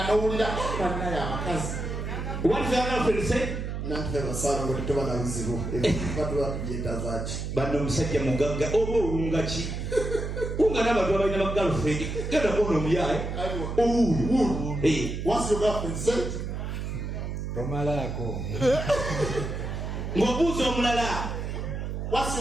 n'owulira bannaye abakazi what's your girlfriend said nantufe basaala ngo tetuba na buzibu batuba tugyeta zaaki banno omusajja mugagga oba owunga ki wunga n'abantu abalina ba girlfriend genda kuona omuyaye owuulu what's your girlfriend said tomalako ng'obuuza omulala what's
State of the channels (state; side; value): noise; right; hum, 4 dB below the sound